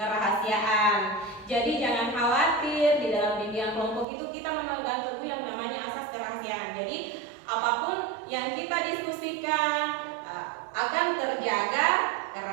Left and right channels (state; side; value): drops out; left; at 4.0 s